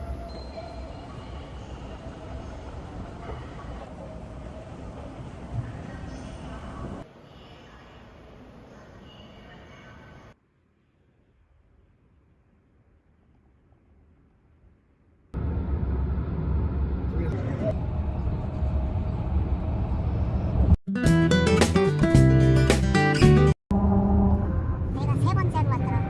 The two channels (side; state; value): both; identical; correlation 1.00